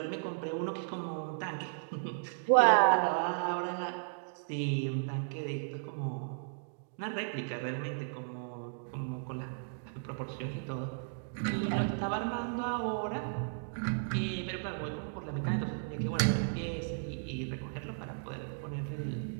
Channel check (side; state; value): left; silent; digital silence